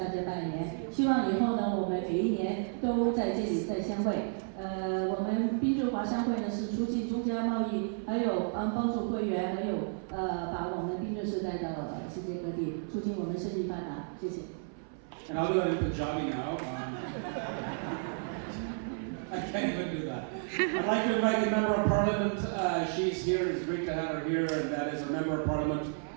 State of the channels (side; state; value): left; silent; 56 dB below the other